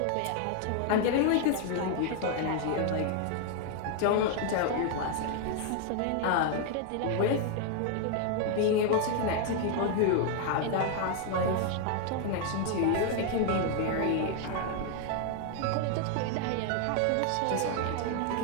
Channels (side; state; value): both; different; correlation 0.00